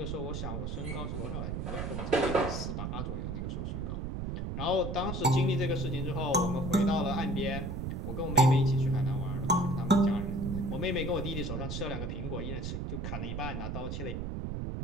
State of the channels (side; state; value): right; noise; rumble, 3 dB below the sound